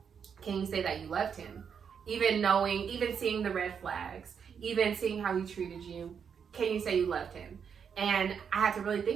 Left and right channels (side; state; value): left; quieter; 7.1 dB